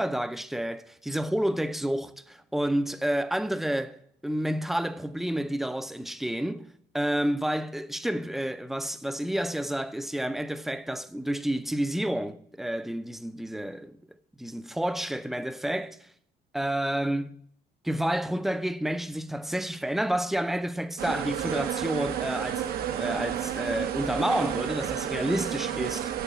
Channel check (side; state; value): both; normal; correlation 0.87